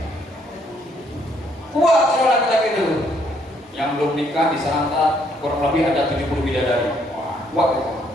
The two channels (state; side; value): normal; both; correlation 0.69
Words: kuat orang laki-laki itu. Yang belum nikah di sana kurang lebih ada 70 bidadari. Wah, kuat itu.